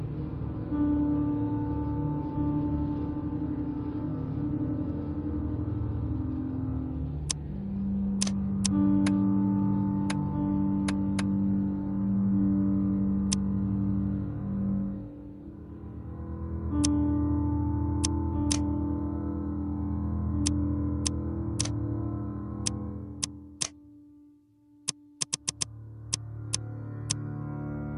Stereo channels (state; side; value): identical; both; correlation 1.00